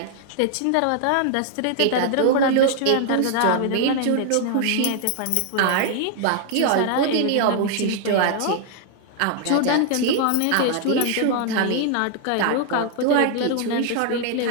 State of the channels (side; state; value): both; different; correlation 0.00